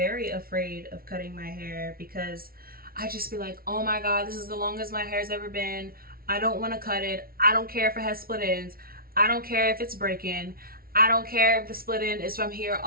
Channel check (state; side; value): late; left; 0.43 ms